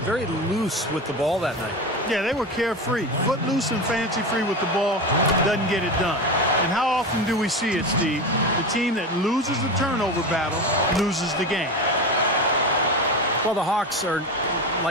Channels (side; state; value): both; normal; correlation 0.23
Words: very loose with the ball that night. Yeah, they were carefree. Footloose and fancy-free with the ball doesn't get it done. And how often do we see it, Steve? The team that loses the turnover battle loses the game. Well, the Hawks are